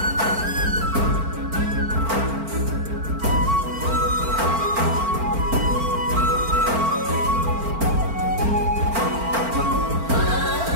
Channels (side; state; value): left; late; 4.4 ms